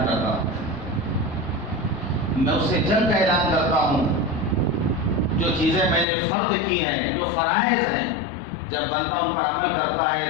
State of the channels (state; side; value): drops out; right; at 6.1 s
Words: کرتا ہوں، میں اس سے جنگ کا اعلان کرتا ہوں۔ جو چیزیں میں نے فرض کی ہیں، جو فرائض ہیں، جب بندہ ان پر عمل کرتا ہے